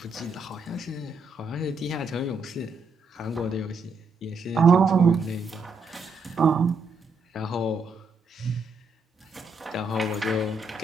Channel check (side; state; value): left; quieter; 3.4 dB